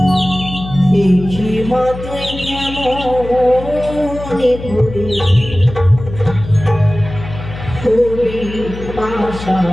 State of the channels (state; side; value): noise; left; hum, 11 dB below the sound